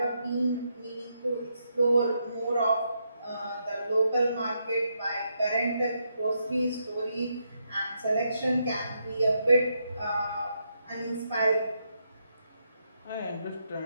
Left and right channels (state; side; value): inverted; both; correlation -0.80